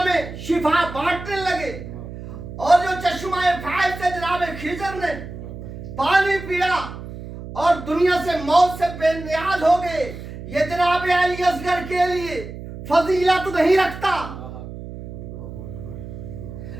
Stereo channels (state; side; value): noise; right; hum, 11 dB below the sound